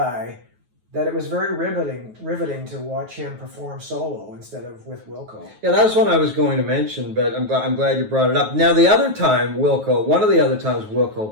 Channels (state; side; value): late; left; 9.3 ms